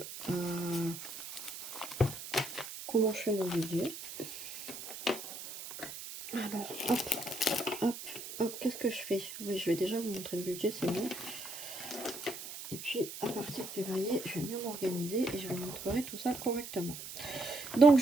comment je fais mon budget. Alors, hop, hop, hop, qu'est-ce que je fais? Oui, je vais déjà vous montrer le budget, c'est bon. Et puis, à partir de février, je vais mieux m'organiser et je vous montrerai tout ça correctement. Donc,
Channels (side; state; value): right; noise; hiss, 10 dB below the sound